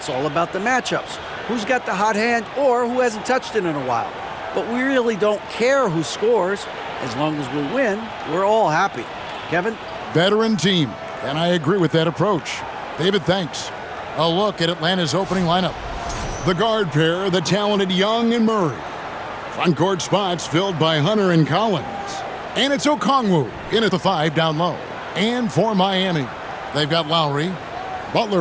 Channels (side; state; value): both; identical; correlation 1.00